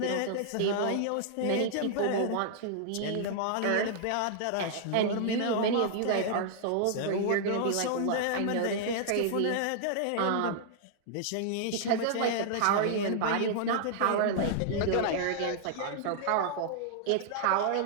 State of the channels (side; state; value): both; different; correlation -0.01